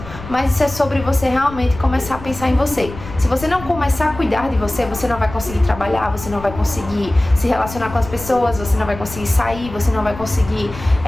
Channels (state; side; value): noise; left; rumble, 13 dB below the sound